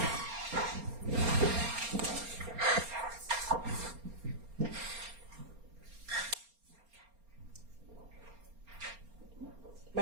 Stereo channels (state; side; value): late; left; 4.3 ms